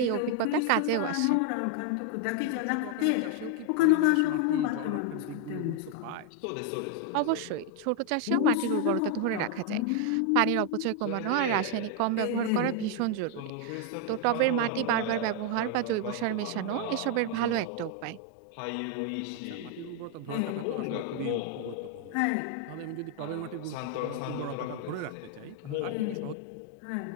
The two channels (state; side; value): different; both; correlation 0.01